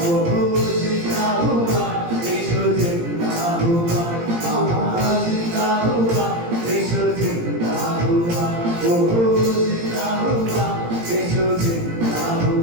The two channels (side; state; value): left; late; 17 ms